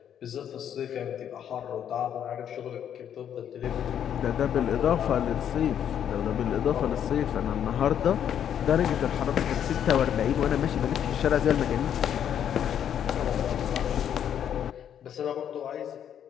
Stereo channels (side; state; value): right; quieter; 9.4 dB